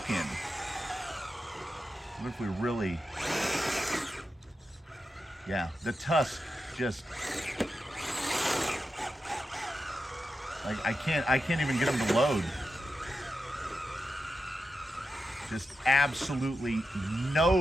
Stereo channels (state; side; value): normal; both; correlation 0.88